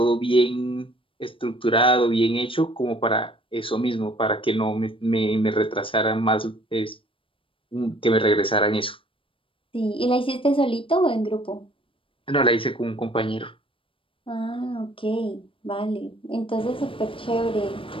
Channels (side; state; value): right; late; 0.25 ms